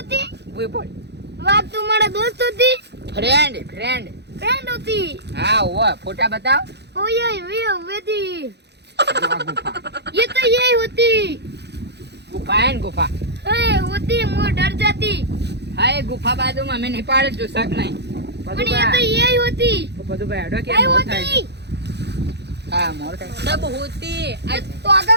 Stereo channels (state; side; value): late; left; 0.49 ms